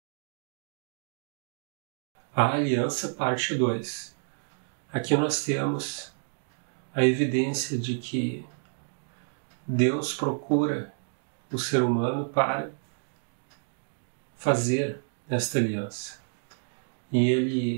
A aliança, parte 2. Aqui nós temos a evidência de que Deus procura o ser humano para fazer esta aliança. E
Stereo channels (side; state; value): left; silent; digital silence